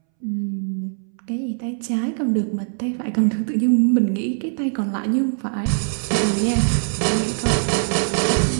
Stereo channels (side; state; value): left; silent; 64 dB below the other